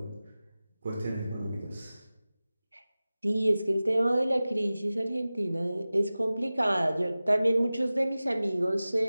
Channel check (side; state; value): both; inverted; correlation -0.97